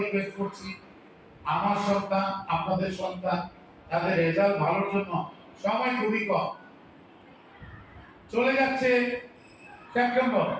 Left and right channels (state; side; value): identical; both; correlation 1.00